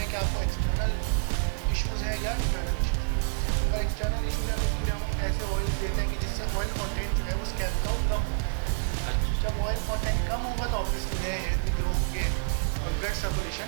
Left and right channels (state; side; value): silent; left; 59 dB below the other